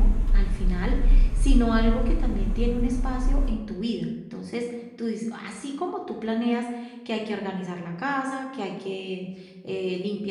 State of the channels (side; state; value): both; identical; correlation 1.00